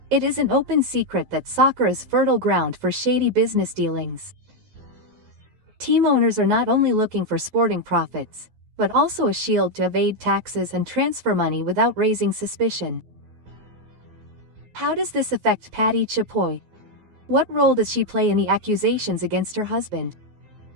It is an open secret that soccer is fertile ground for shady business dealings. Team owners are not only looking for sporting profits, but also a shield to evade taxes and transfer money without raising suspicion. How does this affect Patty Chapoy? What role does she play in the accusations against her husband?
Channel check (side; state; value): left; late; 12 ms